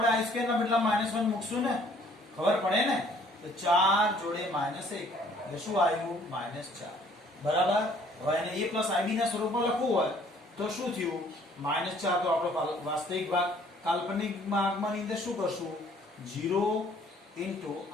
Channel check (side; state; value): both; normal; correlation 0.59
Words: i સ્ક્વેર ના બદલા -1 મૂકશું ને ખબર પડે ને તો 4 જોડે -1 એટલે શું આવ્યું -4 બરાબર હવે એને a + ib ના સ્વરૂપમાં લખવું હોય તો શું થયું -4 તો આપણો વાસ્તવિક ભાગ કાલ્પનિક ભાગમાં અંદર શું કરશું 0 * i